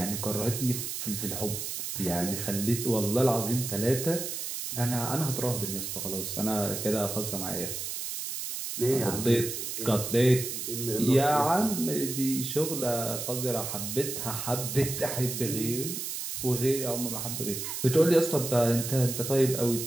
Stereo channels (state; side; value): noise; right; hiss, 5 dB below the sound